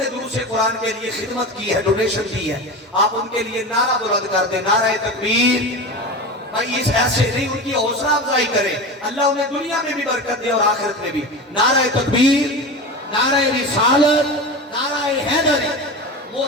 دروس قرآن کے لیے خدمت کی ہے, ڈونیشن کی ہے, آپ ان کے لیے نعرہ بلند کر دیں, نعرہ تکبیر, بھائی اس ایسے نہیں، ان کی حوصلہ افزائی کریں، اللہ انہیں دنیا میں بھی برکت دے اور آخرت میں بھی۔ نعرہ تکبیر، نعرہ رسالت، نعرہ حیدری۔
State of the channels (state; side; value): normal; both; correlation 0.27